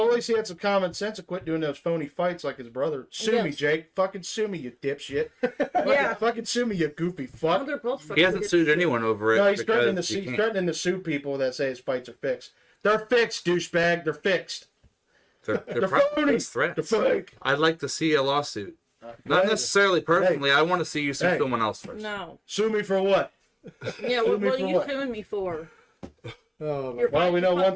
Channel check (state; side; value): identical; both; correlation 1.00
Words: least he had some common sense and quit doing those phony fights like his brother. Sue me, Yes. Jake. Fucking sue me, you dipshit. Yeah. Fucking sue me, you goofy Oh, fuck. they're both fucking He hasn't idiots. sued anyone over it No, he's threatening to because sue. he He's can't. threatening to sue people that say his fights are fixed. They're fixed, douchebag. They're fixed. They're They're probably phony. just threats. They're fake. I'd like to see a lawsuit. Not necessarily personally. I want to see you sue Hey. someone else first. No. Sue me for what? Yeah, Sue what me are for you what? suing me for? Oh, my You're Well, we know one